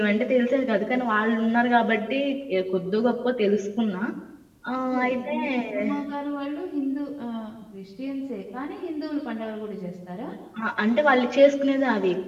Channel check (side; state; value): both; identical; correlation 1.00